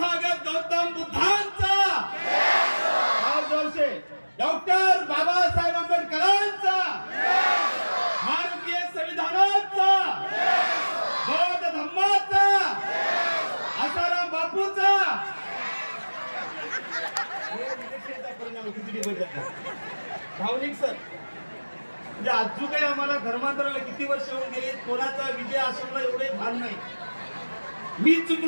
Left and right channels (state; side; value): inverted; both; correlation -1.00